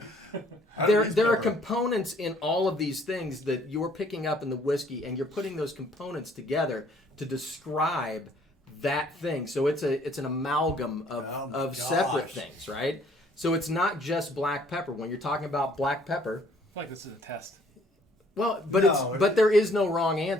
There are components in all of these things that you're picking up in the whiskey, and you're putting those components together to describe that thing. So it's an amalgam Oh my of separate gosh. things, right? So it's not just black pepper. When you're talking about black pepper, I feel like this is a test. well, but No, but there is no wrong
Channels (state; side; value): normal; both; correlation 0.61